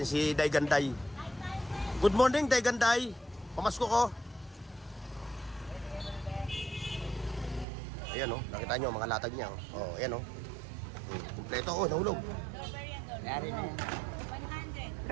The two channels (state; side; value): drops out; left; at 7.7 s